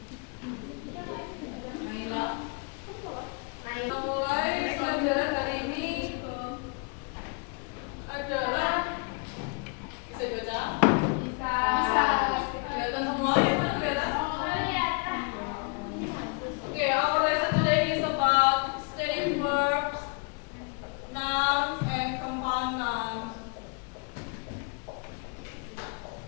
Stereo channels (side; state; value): right; quieter; 34.5 dB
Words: Nah, mulai pelajaran hari ini adalah bisa dibaca? Bisa. Kelihatan semua ya, kelihatan? Okay, our lesson today is about steady verbs, nouns, and compound nouns.